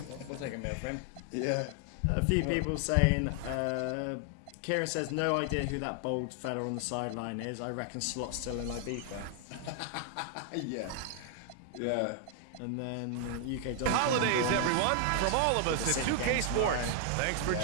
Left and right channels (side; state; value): both; different; correlation 0.00